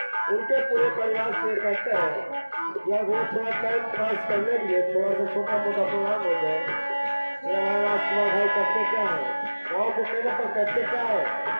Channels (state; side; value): inverted; both; correlation -1.00